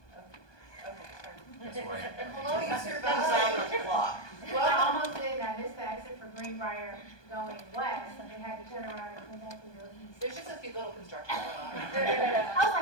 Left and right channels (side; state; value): right; late; 1.2 ms